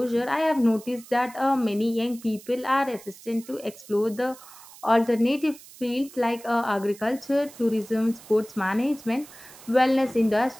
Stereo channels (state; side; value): noise; right; hiss, 20 dB below the sound